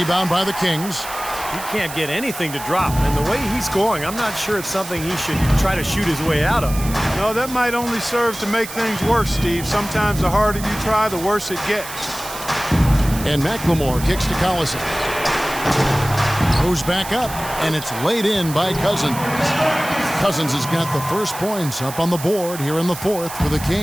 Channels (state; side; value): noise; right; hiss, 11 dB below the sound